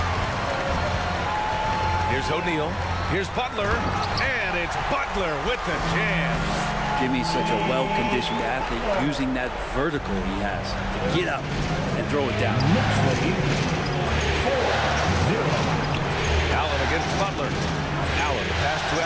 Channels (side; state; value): both; identical; correlation 1.00